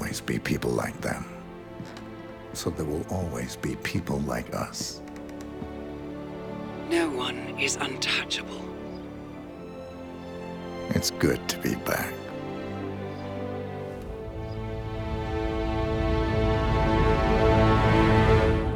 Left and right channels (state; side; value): identical; both; correlation 1.00